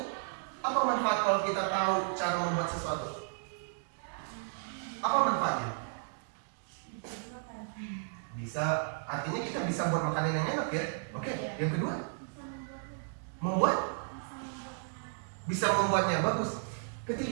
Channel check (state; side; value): silent; left; digital silence